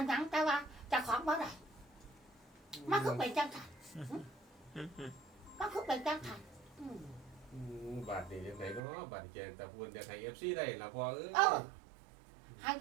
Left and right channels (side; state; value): left; drops out; at 8.8 s